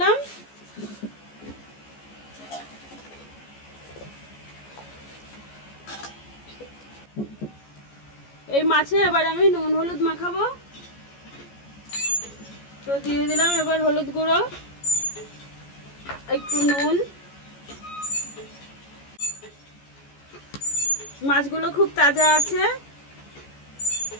এই মাছে এবার আমি নুন হলুদ মাখাবো। তো দিয়ে দিলাম এবার হলুদ গুঁড়ো, একটু নুন। মাছগুলো খুব তাজা আছে,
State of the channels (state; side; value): late; right; 14 ms